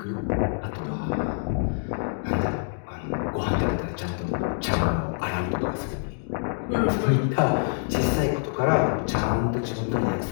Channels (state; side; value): silent; right; digital silence